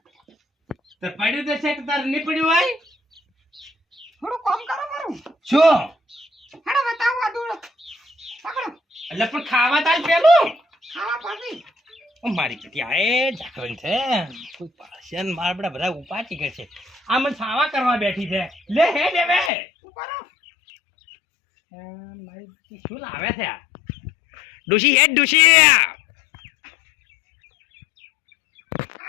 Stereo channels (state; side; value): drops out; right; at 19.5 s